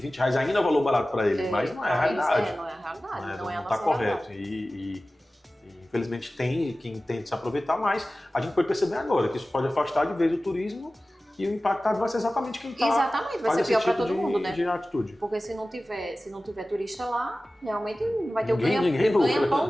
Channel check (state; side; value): normal; both; correlation 0.96